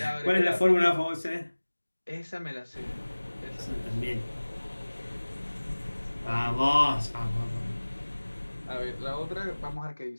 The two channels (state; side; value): inverted; both; correlation -1.00